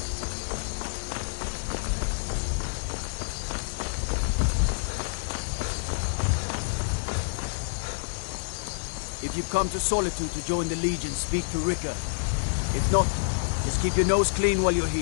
If you've come to Solitude to join the Legion, speak to Rika. If not, just keep your nose clean while you're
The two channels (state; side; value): silent; right; digital silence